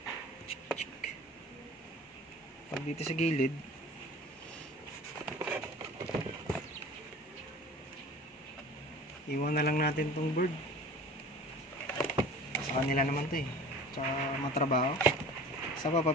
sa gilid. Iwan na lang natin tong board. Sa kanila naman to tsaka matrabaho. Sa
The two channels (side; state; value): both; normal; correlation 0.42